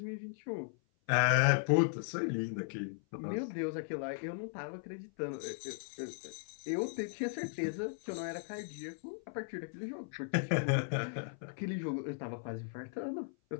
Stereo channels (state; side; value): silent; right; 53 dB below the other